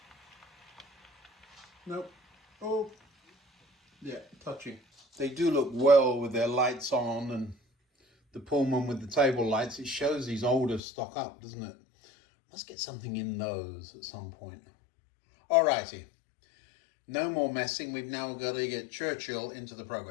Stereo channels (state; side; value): drops out; right; at 10.8 s